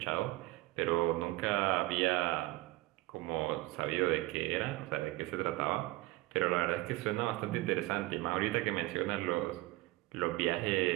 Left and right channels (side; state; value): left; quieter; 19.4 dB